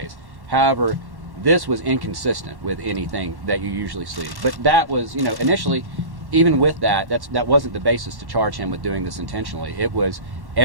However, this was inconsistent with anything that you usually see. But that was, initially, even with that wasn't the basis to charge him with doing this intentionally. It was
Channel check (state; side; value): late; left; 1.1 ms